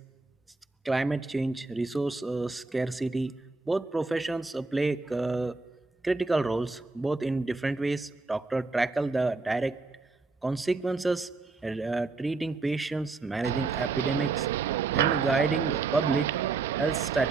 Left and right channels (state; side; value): quieter; left; 3.8 dB